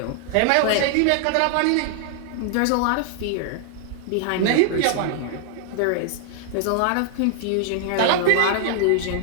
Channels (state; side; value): different; both; correlation 0.00